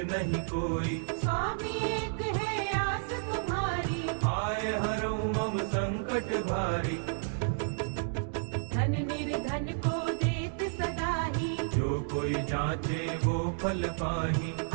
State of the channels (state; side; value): silent; left; digital silence